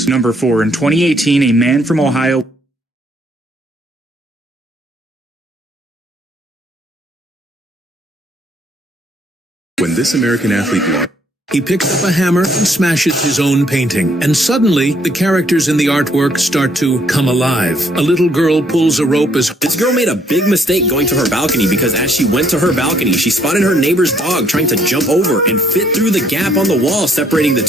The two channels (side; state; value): both; normal; correlation 0.68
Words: Number 4, in 2018, a man from Ohio... When this American athlete lost... He picks up a hammer and smashes his own painting, and suddenly the characters in the artwork start to come alive. A little girl pulls a rope as... This girl made a big mistake going to her balcony, because as she went to her balcony, she spotted her neighbor's dog trying to jump over and fit through the gap on the wall separating the